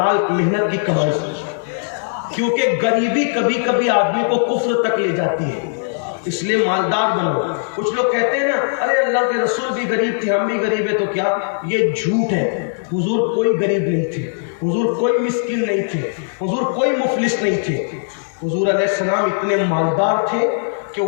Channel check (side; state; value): right; silent; digital silence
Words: محنت کی کمائی سے. کیونکہ غریبی کبھی کبھی آدمی کو کفر تک لے جاتی ہے، اس لیے مالدار بنو. کچھ لوگ کہتے ہیں نا، ارے اللہ کے رسول بھی غریب تھے، ہم بھی غریب ہیں، تو کیا؟ یہ جھوٹ ہے. حضور کوئی غریب نہیں تھے، حضور کوئی مسکین نہیں تھے، حضور کوئی مفلس نہیں تھے. حضور علیہ السلام اتنے مالدار تھے کہ